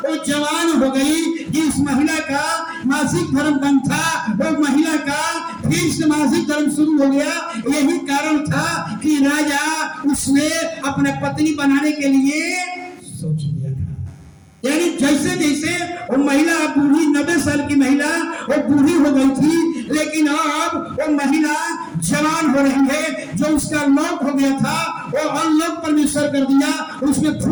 जवान हो गई। जिस महिला का मासिक धर्म बंद था, वो महिला का फिर से मासिक धर्म शुरू हो गया। यही कारण था कि राजा उसने अपने पत्नी बनाने के लिए सोच लिया था। यानी जैसे जैसे वो महिला बूढ़ी, 90 साल की महिला वो बूढ़ी हो गई थी, लेकिन अब वो महिला जवान हो रही है। जो उसका लॉक हो गया था वो अनलॉक परमेश्वर कर दिया, उसमें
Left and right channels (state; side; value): identical; both; correlation 1.00